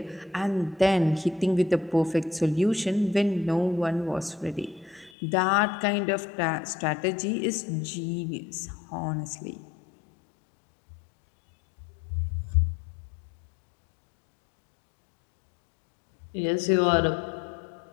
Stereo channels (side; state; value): right; drops out; at 5.1 s